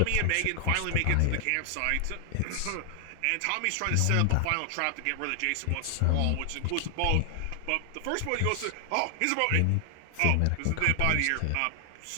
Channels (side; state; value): both; different; correlation 0.00